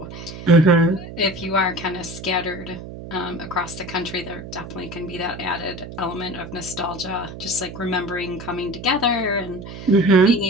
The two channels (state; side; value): noise; right; hum, 11 dB below the sound